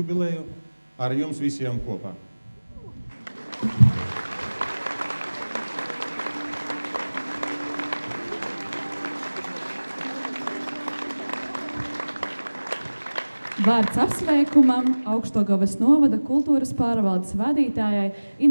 ar jums visiem kopā. Vārds apsveikumam Augšdaugavas novada kultūras pārvaldes vadītājai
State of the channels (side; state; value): both; inverted; correlation -1.00